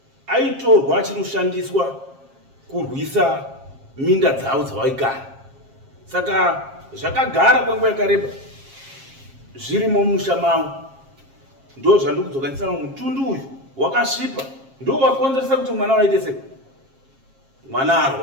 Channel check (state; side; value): late; left; 7.4 ms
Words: aitorwa achinoshandiswa kurwisa minda dzavo dzawaigara. Saka zvakagara kwenguva yakareba zvirimo mumusha mavo. Ndo zvandiri kudzokanisa mutundu uyu wakasvipa ndo wakonzeresa kuti mwana waite sei mwana